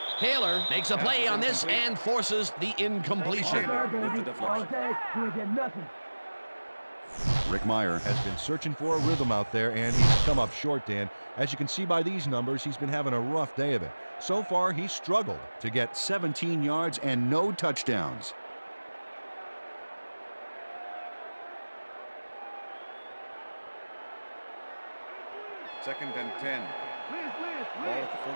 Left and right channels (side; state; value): both; inverted; correlation -1.00